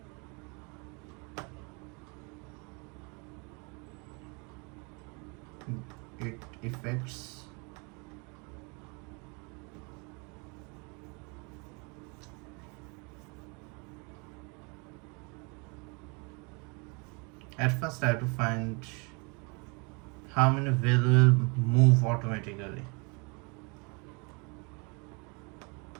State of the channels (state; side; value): quieter; left; 32.1 dB